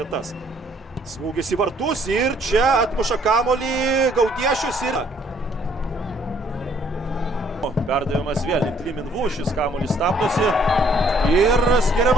Smūgis į vartus ir čia atmuša kamuolį Gaudiešius ir... Perdavimas vėl link Liminvų, šis kamuolys stabdosi ir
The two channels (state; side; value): normal; both; correlation 0.63